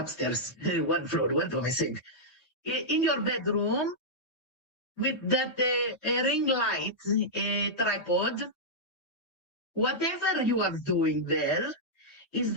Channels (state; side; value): late; right; 3.2 ms